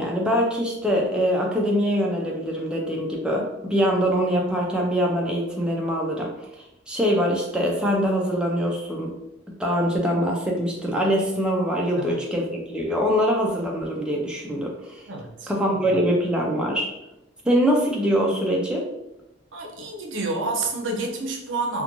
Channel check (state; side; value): normal; both; correlation 0.51